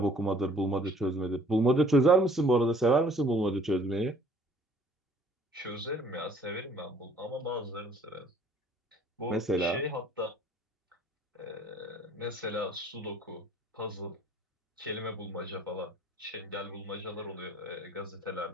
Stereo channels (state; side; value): normal; both; correlation 0.56